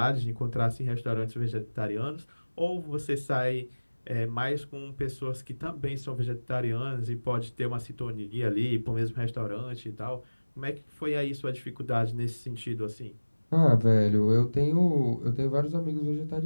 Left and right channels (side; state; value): both; inverted; correlation -1.00